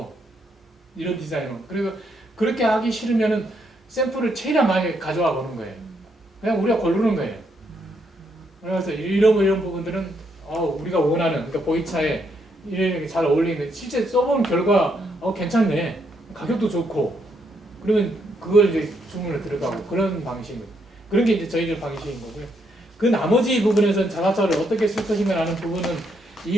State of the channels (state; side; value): normal; both; correlation 0.75